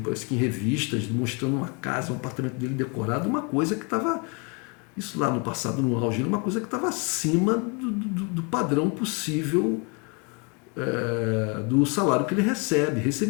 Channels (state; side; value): quieter; right; 33.0 dB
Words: parece que em revistas, mostrando uma casa, um apartamento dele decorado, uma coisa que estava, isso lá no passado, no auge, uma coisa que estava acima do padrão possível do salário que ele